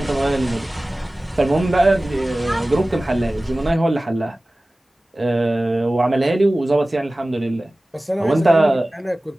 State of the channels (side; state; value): both; normal; correlation 0.98